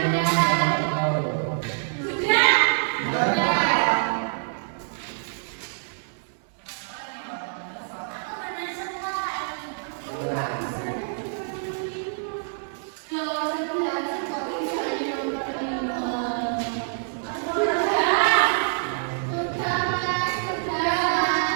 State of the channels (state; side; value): silent; left; 61 dB below the other